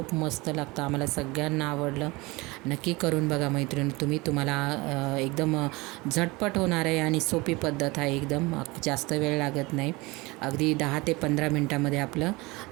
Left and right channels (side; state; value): left; quieter; 23.6 dB